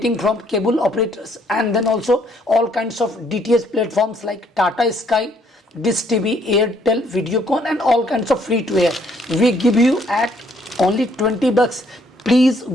from cable operators, and then also all kinds of DTH platforms like Tata Sky, Dish TV, Airtel, Videocon, and all kinds of free to air. We give you at only 20 bucks. Please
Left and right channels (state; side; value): normal; both; correlation 0.66